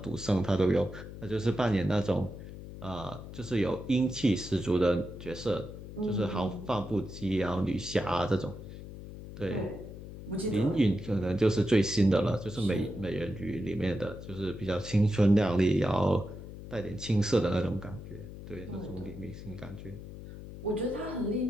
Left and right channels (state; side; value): noise; left; hum, 12 dB below the sound